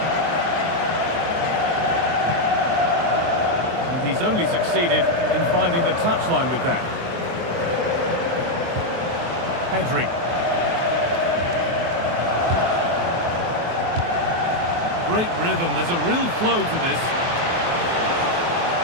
And he's only succeeded in finding the touchline with that. Pedri. Great rhythm, there's a real flow to this.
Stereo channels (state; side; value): late; left; 23 ms